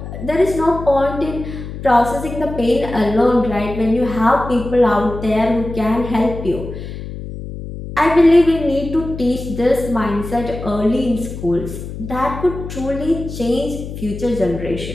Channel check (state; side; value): noise; left; hum, 9 dB below the sound